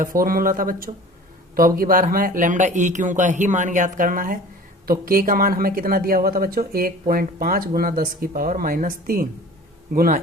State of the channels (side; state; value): both; normal; correlation 0.43